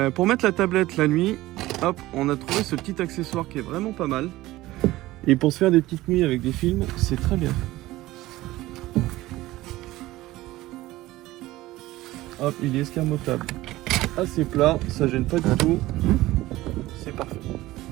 Pour mettre la tablette la nuit, hop, on a trouvé ce petit accessoire qui est vraiment pas mal. Et pour se faire des petites nuits avec des films, c'est très bien. Hop, il est escamotable. Assez plat, ça gêne pas du tout. C'est parfait.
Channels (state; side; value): quieter; left; 17.5 dB